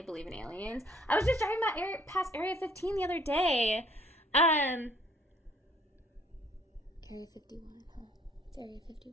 believe in aliens. I was just driving past Area 15 the other day. Area 51, huh? It's Area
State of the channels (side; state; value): both; normal; correlation 0.60